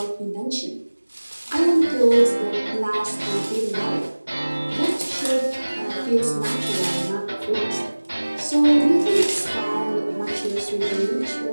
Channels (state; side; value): inverted; both; correlation -1.00